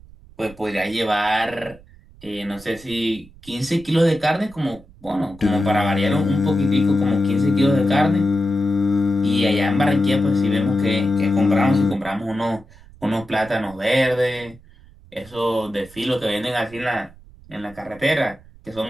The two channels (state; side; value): noise; right; rumble, 23 dB below the sound